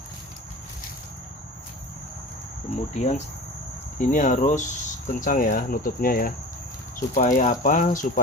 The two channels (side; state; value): both; normal; correlation 0.36